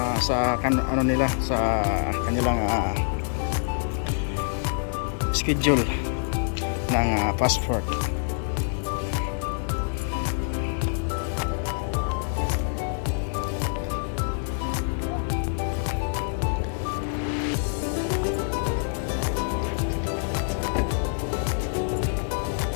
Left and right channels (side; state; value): right; silent; digital silence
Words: sa nila, sa kanilang schedule ng passport.